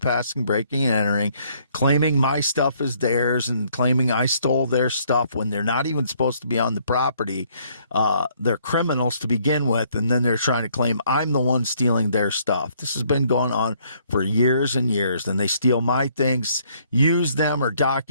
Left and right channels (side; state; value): both; inverted; correlation -0.65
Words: breaking and entering, claiming my stuff is theirs and claiming I stole their stuff when they're not even supposed to be on the property. They're criminals to begin with, and then they're trying to claim I'm the one stealing their stuff. This has been going on for years and years. Then they steal my things, use them or